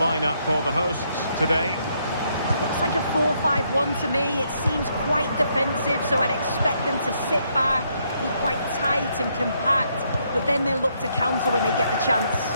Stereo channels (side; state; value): both; inverted; correlation -0.74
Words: for the hosts today. It looks like a 4-5-1 to me. It seems quite defensive, so I'd expect them to sit back, be quite tight and compact. but then they'll look to counter when they get the chance.